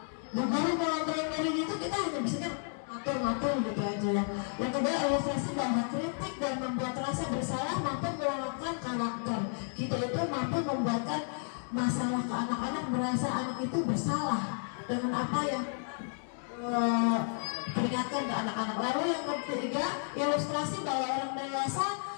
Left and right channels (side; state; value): right; silent; 56 dB below the other